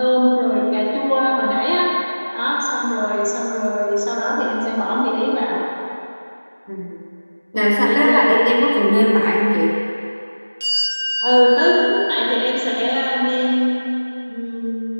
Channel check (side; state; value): both; inverted; correlation -1.00